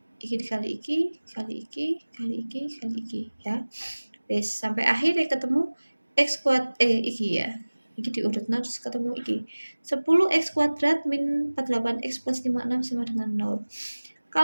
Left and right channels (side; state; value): both; inverted; correlation -1.00